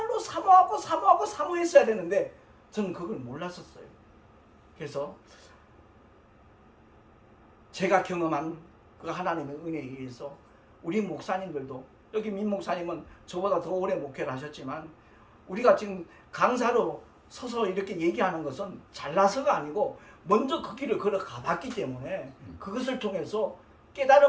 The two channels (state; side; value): identical; both; correlation 1.00